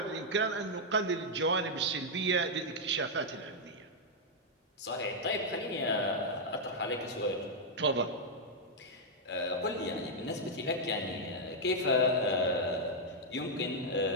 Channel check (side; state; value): both; normal; correlation -0.03